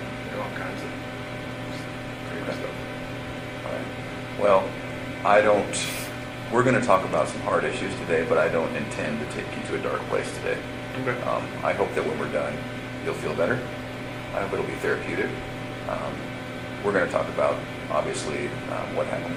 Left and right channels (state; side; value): identical; both; correlation 1.00